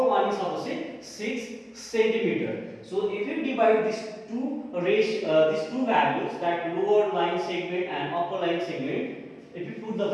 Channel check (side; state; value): both; identical; correlation 1.00